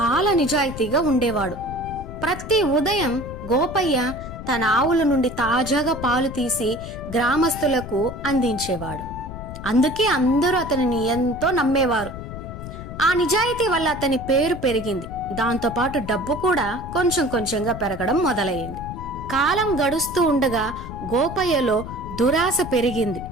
నిజాయితీగా ఉండేవాడు. ప్రతి ఉదయం గోపయ్య తన ఆవుల నుండి తాజాగా పాలు తీసి గ్రామస్తులకు అందించేవాడు. అందుకే అందరూ అతనిని ఎంతో నమ్మేవారు. ఆ నిజాయితీ వల్ల అతని పేరు పెరిగింది. దాంతోపాటు డబ్బు కూడా కొంచెం కొంచెంగా పెరగడం మొదలయ్యింది. కాలం గడుస్తూ ఉండగా గోపయ్యలో దురాశ పెరిగింది.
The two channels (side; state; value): left; noise; rumble, 10 dB below the sound